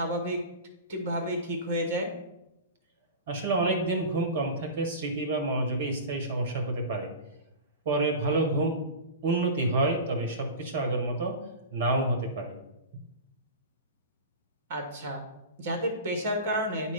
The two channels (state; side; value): inverted; both; correlation -0.31